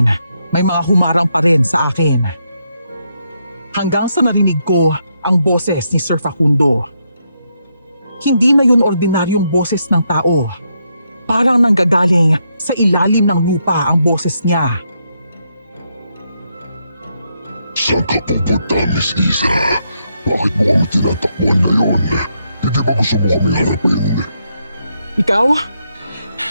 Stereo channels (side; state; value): both; inverted; correlation -0.79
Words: may mga humarang pa rin sa akin. Hanggang sa narinig ko ang boses ni Sir Facundo. Hindi na yun ordinaryong boses ng tao. Parang nanggagaling sa ilalim ng lupa ang boses niya. Saan ka pupunta, Miss Isa? Bakit mo kami tinatakbuhan ngayon? Hindi ba gusto mo kami harapin? Ikaw?